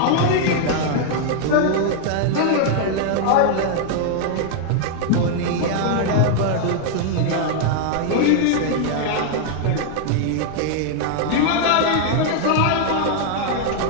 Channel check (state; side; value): different; both; correlation 0.00